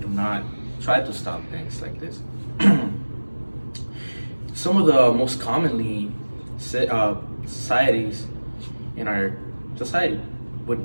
not try to stop things like this. Some of the most commonly societies in our society would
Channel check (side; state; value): both; inverted; correlation -1.00